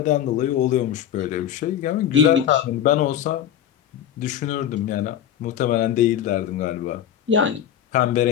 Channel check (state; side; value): quieter; right; 10.1 dB